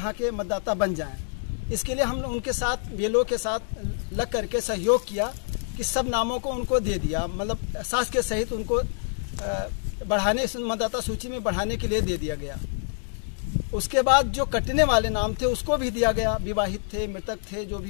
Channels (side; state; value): right; silent; digital silence